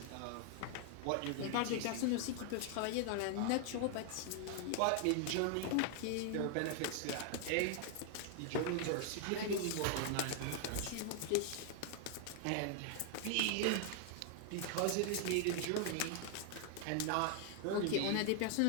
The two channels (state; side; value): different; both; correlation 0.00